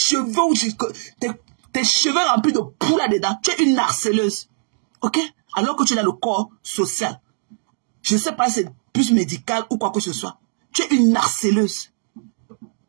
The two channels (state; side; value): silent; left; digital silence